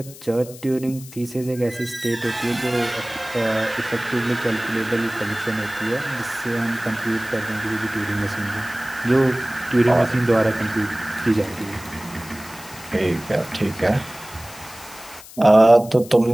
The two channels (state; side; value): noise; left; hiss, 17 dB below the sound